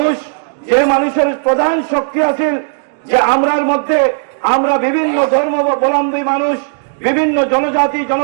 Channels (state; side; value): silent; left; digital silence